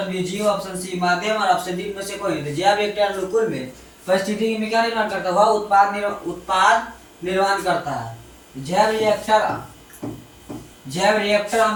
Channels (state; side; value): identical; both; correlation 1.00